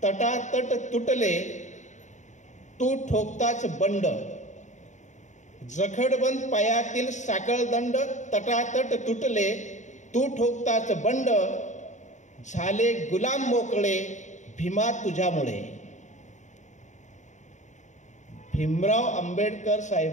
तटातट तुटले तू ठोकताच बंड. जखडबंद पायातील साखळदंड तटातट तुटले तू ठोकताच बंड. झाले गुलाम मोकळे भीमा तुझ्यामुळे. भीमराव आंबेडकर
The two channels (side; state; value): right; late; 0.35 ms